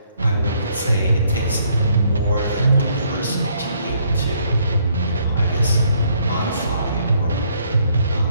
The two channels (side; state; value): both; inverted; correlation -0.68